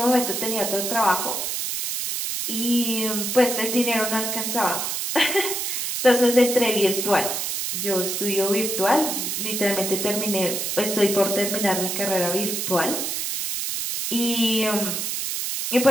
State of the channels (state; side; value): noise; right; hiss, 2 dB below the sound